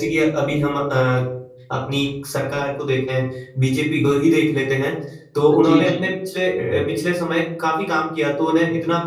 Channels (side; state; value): both; identical; correlation 1.00